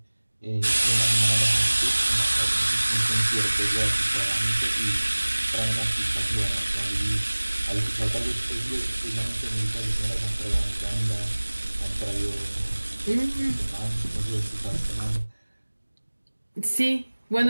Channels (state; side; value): inverted; both; correlation -1.00